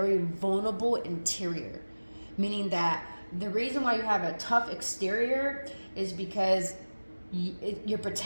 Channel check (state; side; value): inverted; both; correlation -1.00